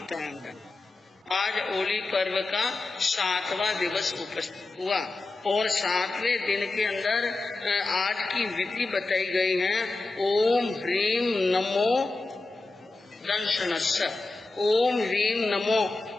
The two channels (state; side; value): quieter; right; 3.3 dB